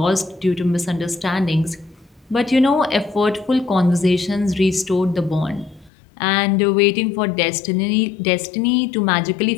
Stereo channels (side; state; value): right; drops out; at 5.9 s